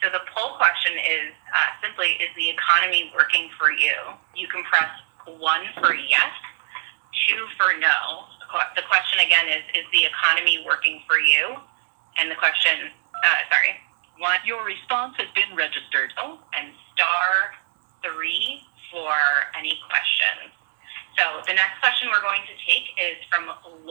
the poll question is simply, is the economy working for you? You can press 1 for yes, 2 for no. The question again is the economy working for you? And the question, 1. Your response has been registered. And *3 for any questions. So the next question we're going to take is from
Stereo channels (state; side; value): silent; left; digital silence